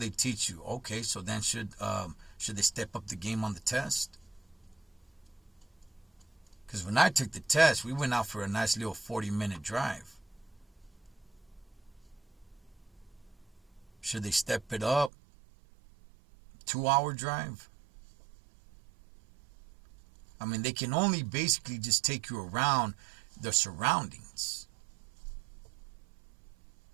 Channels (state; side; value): drops out; left; at 15.1 s